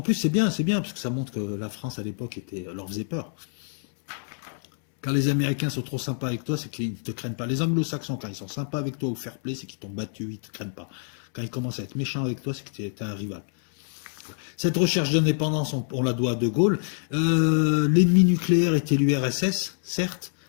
c'est bien, parce que ça montre que la France à l'époque leur faisait peur. Quand les Américains sont trop sympas avec toi, c'est qu'ils ne te craignent pas. Les Anglo-Saxons, quand ils sont sympas avec toi ou fair play, c'est qu'ils t'ont battu, ils ne te craignent pas. Quand ils commencent à être méchants avec toi, c'est que tu es un rival. Cette recherche d'indépendance, on la doit à De Gaulle. L'ennemi nucléaire était l'URSS, certes,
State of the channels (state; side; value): silent; right; digital silence